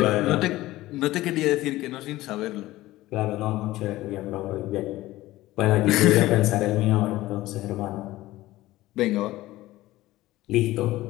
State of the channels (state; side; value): quieter; right; 17.1 dB